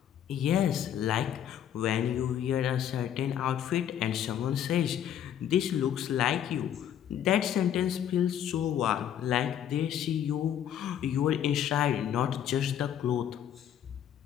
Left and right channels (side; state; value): right; quieter; 10.0 dB